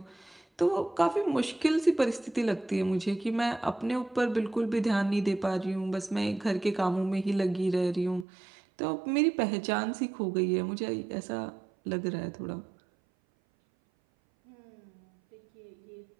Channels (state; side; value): drops out; left; at 8.2 s